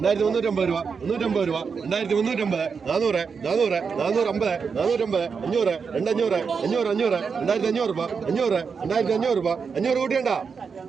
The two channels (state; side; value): quieter; left; 5.7 dB